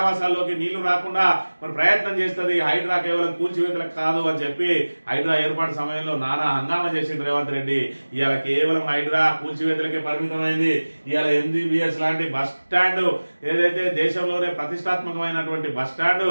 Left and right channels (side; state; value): both; inverted; correlation -1.00